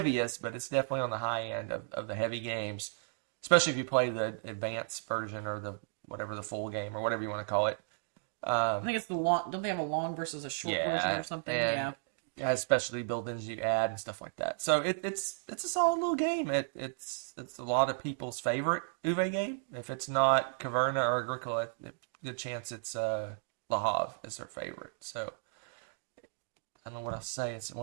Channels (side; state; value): left; silent; digital silence